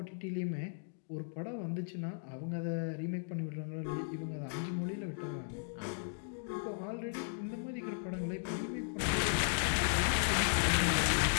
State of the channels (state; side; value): silent; right; digital silence